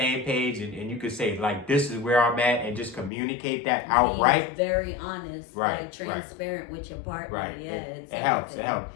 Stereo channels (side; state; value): right; drops out; at 3.1 s